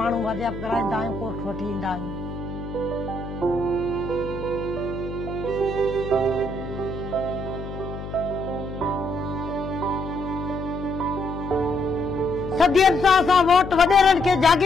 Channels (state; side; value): noise; left; hum, 9 dB below the sound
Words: वाजियाब कराईंदा आहियूं कोर्ट वठी ईंदा आहियूं। सदियनि सां असां वोट वॾेरनि खे